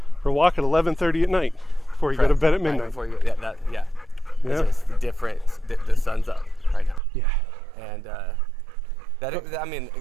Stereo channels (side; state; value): left; drops out; at 7.0 s